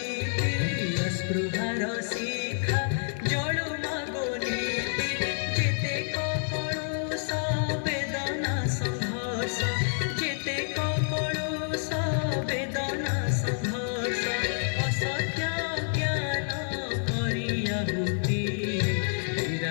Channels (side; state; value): right; silent; digital silence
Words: अस्पृहार शिखा जळु मागो नीति जेते कपळुष वेदना संघर्ष जेते कपळुष वेदना संघर्ष असत्य ज्ञान करियाहुति